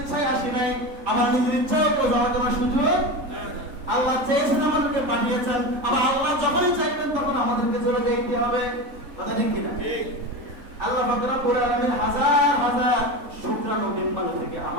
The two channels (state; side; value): late; left; 3.8 ms